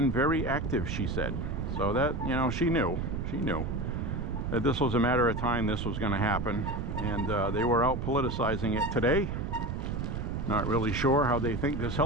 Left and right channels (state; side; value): noise; right; rumble, 3 dB below the sound